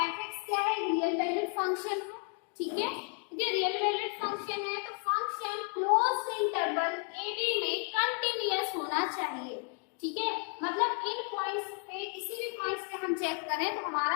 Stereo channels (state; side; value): quieter; right; 39.4 dB